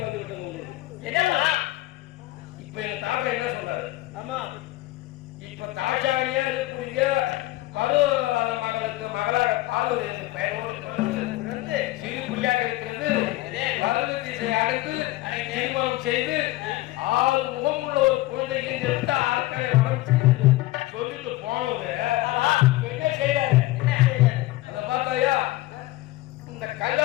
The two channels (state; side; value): quieter; right; 18.0 dB